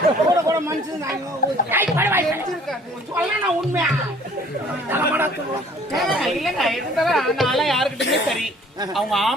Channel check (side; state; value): both; normal; correlation 0.54